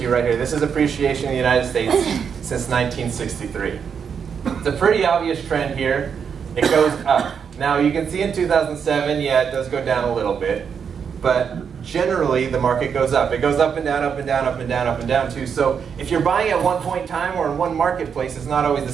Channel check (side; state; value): left; quieter; 6.9 dB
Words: you right here. This is appreciation in the United States since 1963. It's a pretty obvious trend here. It goes up. Now, you can see in 2007, yeah, it does go down a little bit, but generally the market goes up. It goes up and down, up and down, up and down, up and down too. So if you're buying at one point in time or in one marketplace, it's not always the